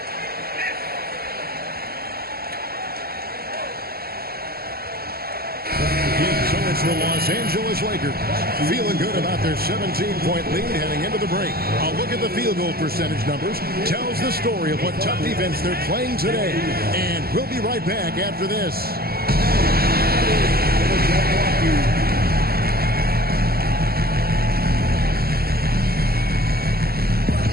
it's the Los Angeles Lakers feeling good about their 17-point lead heading into the break. A look at the field goal percentage numbers tells the story of what tough defense they're playing today. And we'll be right back after this.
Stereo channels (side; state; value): left; late; 0.45 ms